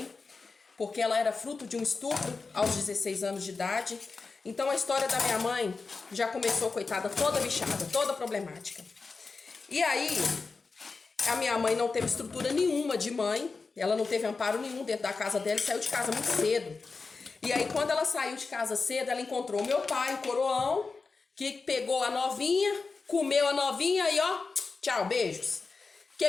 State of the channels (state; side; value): quieter; right; 4.3 dB